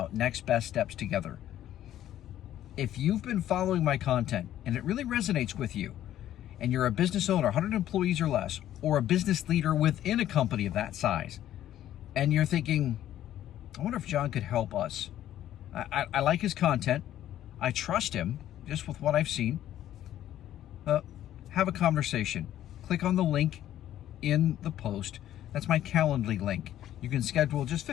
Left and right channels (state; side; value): quieter; right; 12.2 dB